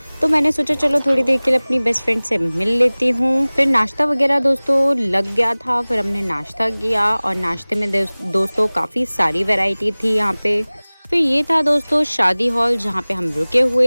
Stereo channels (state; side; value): inverted; both; correlation -1.00